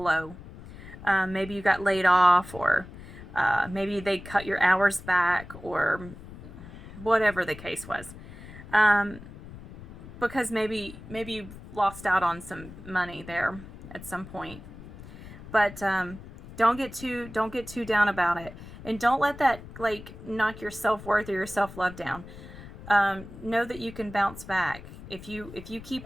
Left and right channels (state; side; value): noise; left; rumble, 15 dB below the sound